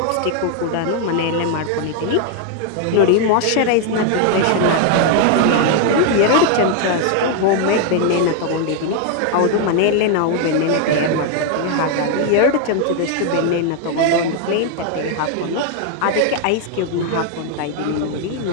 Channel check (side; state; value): both; different; correlation 0.00